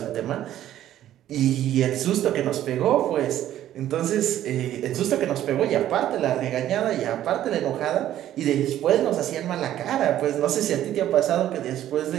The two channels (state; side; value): quieter; left; 12.3 dB